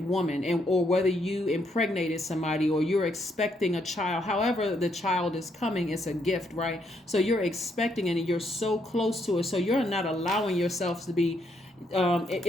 woman, and or whether you impregnated somebody or you're expecting a child. However the child is coming, it's a gift, right? So you're expecting it and you're so close to it. So you're not allowing yourself to be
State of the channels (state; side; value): normal; both; correlation 0.75